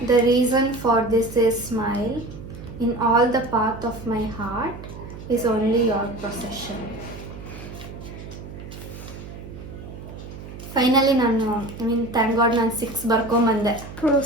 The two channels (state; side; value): noise; right; hum, 13 dB below the sound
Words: The reason for this is smile. In all the path of my heart is only your procession. Finally ನಾನು ಥ್ಯಾಂಕ್ ಗಾಡ್ ನಾನು 6 ಬರ್ಕೊಂಬಂದೆ.